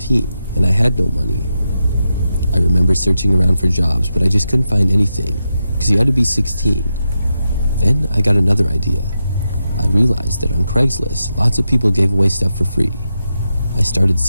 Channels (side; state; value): both; inverted; correlation -0.88